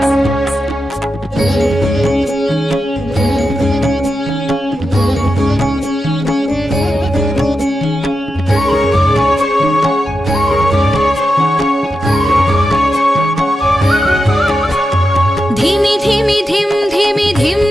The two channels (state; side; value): normal; both; correlation 0.89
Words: धिमि धिमि धिम धिमि धिम